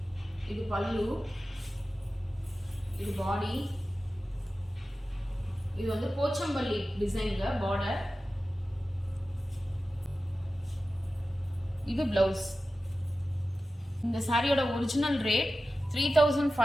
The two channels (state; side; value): normal; both; correlation 0.94